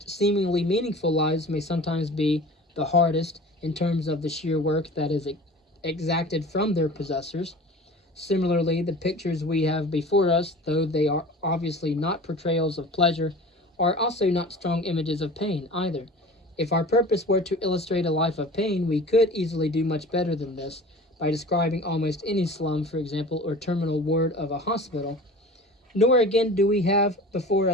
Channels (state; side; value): normal; both; correlation 0.40